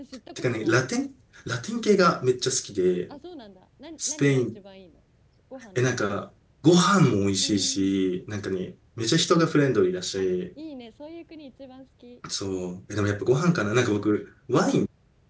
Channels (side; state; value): both; identical; correlation 1.00